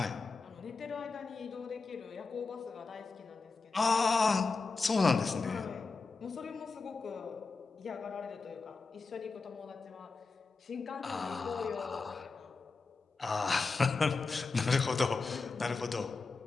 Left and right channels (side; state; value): right; quieter; 4.2 dB